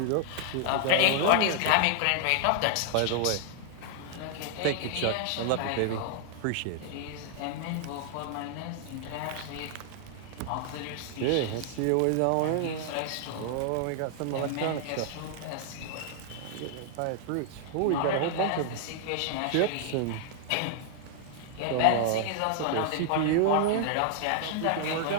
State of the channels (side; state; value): both; different; correlation -0.01